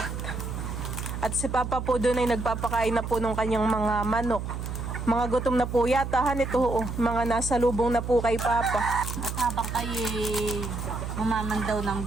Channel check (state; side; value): noise; right; hum, 5 dB below the sound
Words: At si Papa po doon ay nagpapakain na po ng kanyang mga manok. Mga gutom na po yata, han, ito, mga nasa lubong na po kay Papa. At habang kayo mamamandaw ng